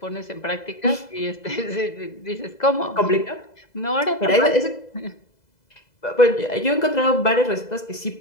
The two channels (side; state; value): right; late; 2.0 ms